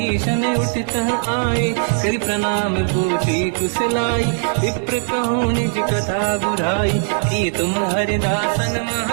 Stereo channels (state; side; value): silent; left; digital silence